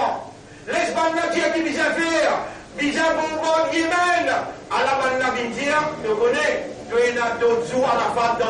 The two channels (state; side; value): identical; both; correlation 1.00